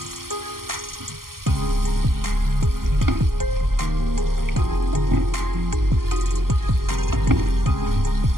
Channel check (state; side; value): late; left; 0.92 ms